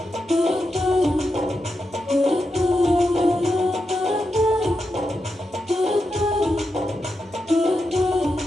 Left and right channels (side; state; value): both; normal; correlation 0.87